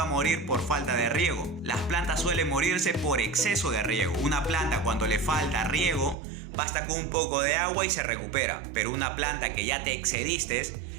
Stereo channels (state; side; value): drops out; left; at 6.2 s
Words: a morir por falta de riego. Las plantas suelen morirse por exceso de riego. Una planta cuando le falta riego, basta con un poco de agua y se recupera. Pero una planta que ya te excediste,